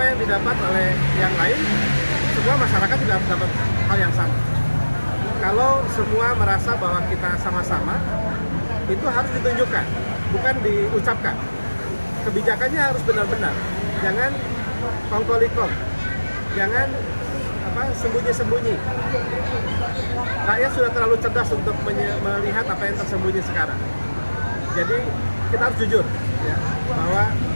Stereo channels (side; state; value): both; inverted; correlation -1.00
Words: yang didapat oleh yang lain, semua masyarakat tidak dapat hal yang sama. Kalau semua merasa bahwa kita sama-sama, itu harus ditunjukkan, bukan diucapkan. Kebijakannya harus benar-benar. Jangan kongkolikom, jangan sembunyi-sembunyi. Rakyat sudah terlalu cerdas untuk melihat apa yang tersembunyi sekarang. Jadi kita harus jujur, ya, bahwa